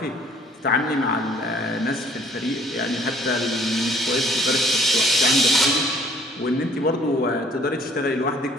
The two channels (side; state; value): both; normal; correlation 0.58